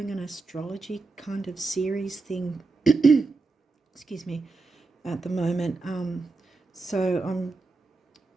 an astrology kind of series thing, excuse me, at the moment. So I'm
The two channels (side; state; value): left; quieter; 3.8 dB